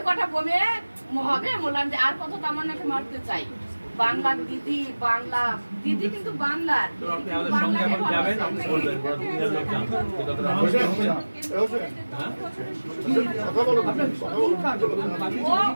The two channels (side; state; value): both; inverted; correlation -1.00